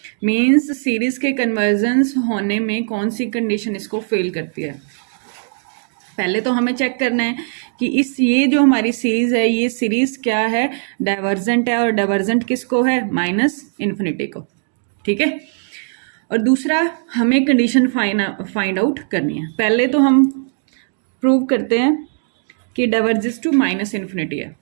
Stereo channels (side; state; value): left; silent; 67 dB below the other